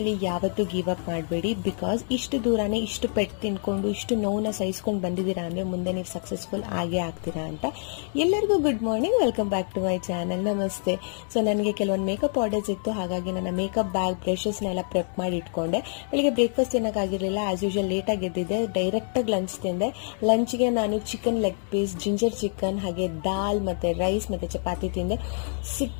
ಯಾವತ್ತೂ ಗಿವ್ ಅಪ್ ಮಾಡಬೇಡಿ. ಬಿಕಾಸ್ ಇಷ್ಟು ದೂರನೇ ಇಷ್ಟು ಪೆಟ್ಟು ತಿನ್ಕೊಂಡು ಇಷ್ಟು ನೋವನ್ನ ಸಹಿಸ್ಕೊಂಡು ಬಂದಿದ್ದೀರಾ ಅಂದರೆ ಮುಂದೆ ನೀವು ಸಕ್ಸಸ್ಫುಲ್ ಆಗೇ ಆಗ್ತೀರಾ ಅಂತ. ಎಲ್ಲರಿಗೂ good morning, welcome back to my channel. ನಮಸ್ತೆ. ಸೊ ನನಗೆ ಕೆಲವೊಂದು ಮೇಕಪ್ ಆರ್ಡರ್ಸ್ ಇತ್ತು, ಹಾಗಾಗಿ ನನ್ನ ಮೇಕಪ್ ಬ್ಯಾಗ್ ಬ್ರಷಸ್ನೆಲ್ಲ ಪ್ರೆಪ್ ಮಾಡಿ ಇಟ್ಕೊಂಡೆ. ಬೆಳಿಗ್ಗೆ ಬ್ರೇಕ್ಫಾಸ್ಟ್ ತಿನ್ನೋಕ್ಕಾಗಿರಲಿಲ್ಲ, ಆಸ್ ಯೂಶುವಲ್ ಲೇಟಾಗಿ ಎದ್ದಿದ್ದೆ. ಡೈರೆಕ್ಟಾಗಿ ಲಂಚ್ ತಿಂದೆ. ಲಂಚ್ಗೆ ನಾನು chicken leg piece, ginger chicken, ಹಾಗೆ ದಾಲ್ ಮತ್ತು ರೈಸ್ ಮತ್ತು ಚಪಾತಿ ತಿಂದೆ.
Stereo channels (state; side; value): silent; right; 56 dB below the other